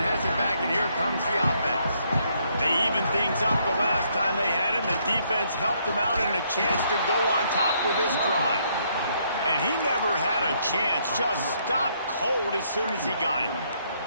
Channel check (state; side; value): inverted; both; correlation -0.71